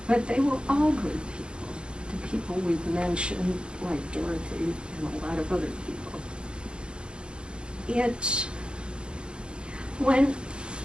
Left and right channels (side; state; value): left; late; 0.054 ms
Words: But they were all good people, the people we've mentioned, like Dorothy and a lot of other people.